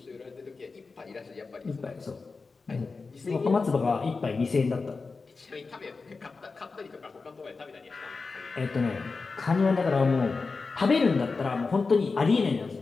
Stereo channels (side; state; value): right; quieter; 4.3 dB